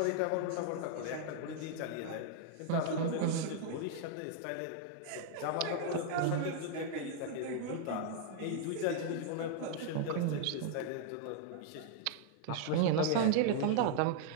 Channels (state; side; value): different; both; correlation -0.01